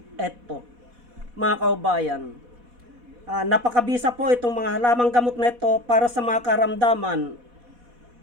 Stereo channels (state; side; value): late; left; 4.1 ms